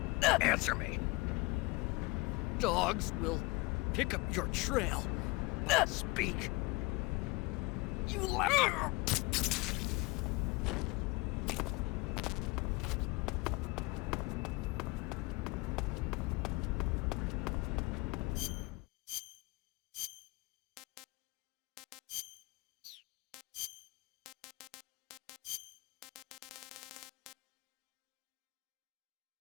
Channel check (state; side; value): quieter; right; 24.9 dB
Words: Answer me. Dogs will pick up your trail. Speak. You liar!